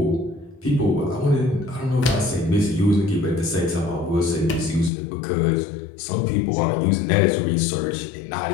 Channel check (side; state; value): right; drops out; at 4.9 s